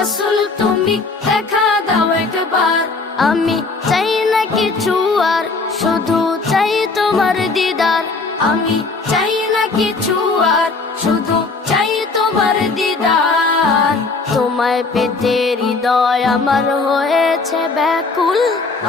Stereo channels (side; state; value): right; quieter; 4.0 dB